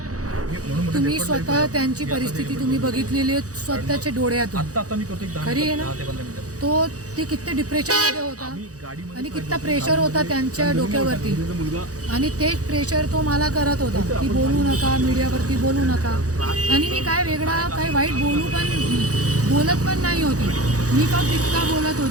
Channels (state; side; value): late; left; 0.67 ms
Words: तुम्ही स्वतः त्यांची परिस्थिती तुम्ही बघितलेली आहे स्वतःच्या डोळ्यातून. खरी आहे ना. ते किती डिप्रेशनमध्ये होता आणि किती प्रेशर होता त्यांच्या डोक्यावरती, आणि तेच प्रेशर तो मला करत होता की बोलू नका, मीडियावरती बोलू नका. आणि मी काय वेगळा काही वाईट बोलत पण नाही होती. मी फक्त इतका बोलत